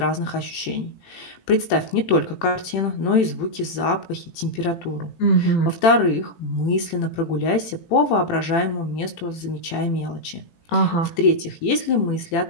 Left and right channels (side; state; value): right; late; 18 ms